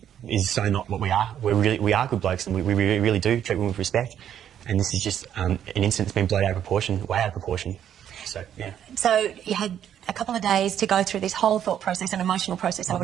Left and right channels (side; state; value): left; quieter; 9.8 dB